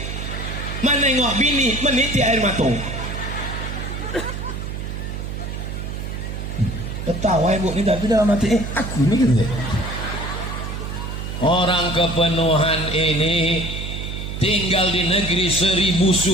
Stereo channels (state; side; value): noise; right; hum, 6 dB below the sound